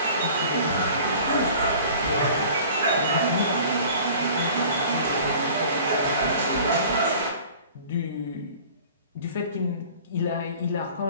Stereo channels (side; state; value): both; inverted; correlation -0.46